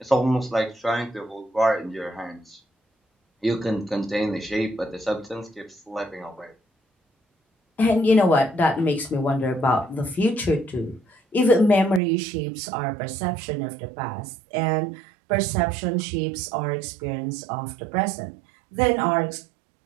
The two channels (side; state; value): left; drops out; at 12.0 s